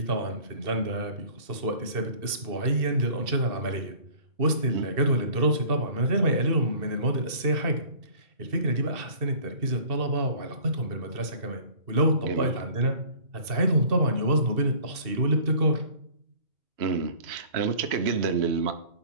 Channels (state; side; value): late; left; 2.7 ms